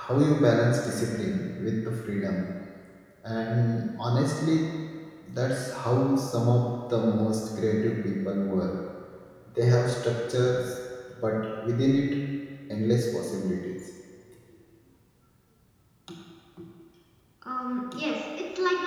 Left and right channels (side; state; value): both; identical; correlation 1.00